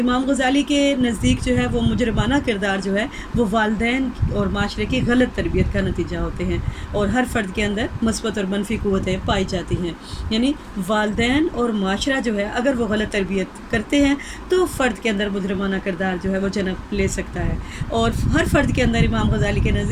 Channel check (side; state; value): both; identical; correlation 1.00